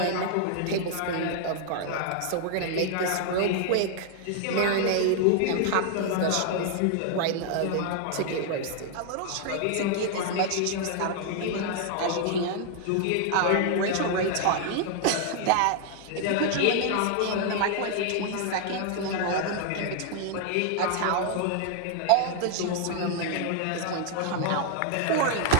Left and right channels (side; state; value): both; different; correlation 0.00